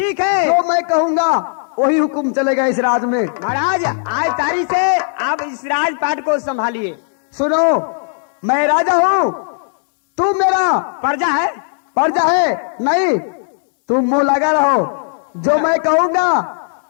है, जो मैं कहूंगा वही हुक्म चलेगा इस राज में। महाराज आज तारीख से आप इस राजपाट को संभालिए। सुनो, मैं राजा हूँ, तू मेरा प्रजा है। प्रजा है नहीं, तुम मुंह लगा रहो। जो मैं कहूंगा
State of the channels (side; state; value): right; silent; digital silence